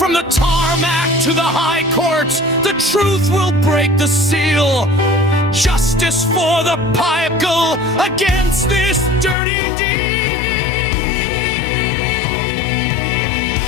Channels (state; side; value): drops out; right; at 9.3 s